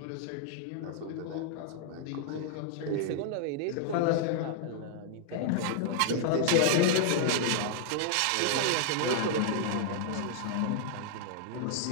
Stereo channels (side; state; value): both; different; correlation -0.01